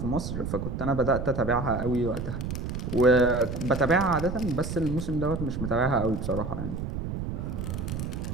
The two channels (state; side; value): noise; right; rumble, 4 dB below the sound